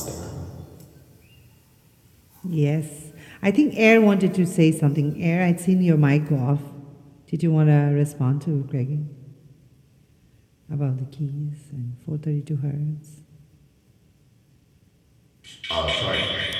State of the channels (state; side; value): identical; both; correlation 1.00